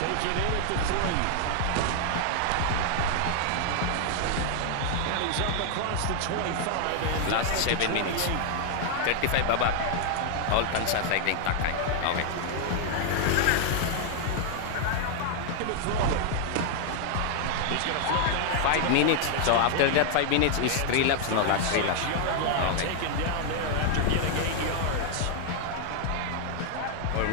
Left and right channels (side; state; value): both; different; correlation 0.00